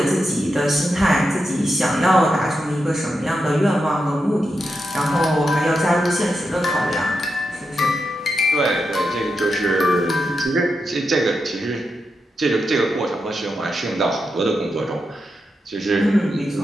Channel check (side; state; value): both; normal; correlation 0.86